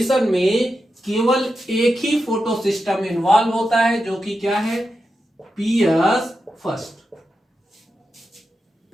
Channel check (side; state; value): both; normal; correlation 0.89